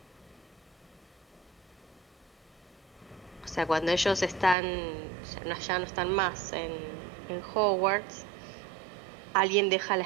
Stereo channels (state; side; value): drops out; left; at 4.5 s